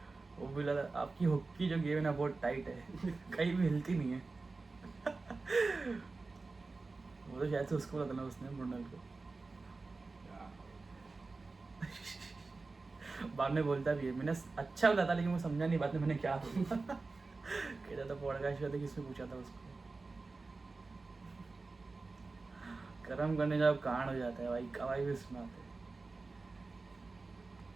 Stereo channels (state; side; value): quieter; left; 3.8 dB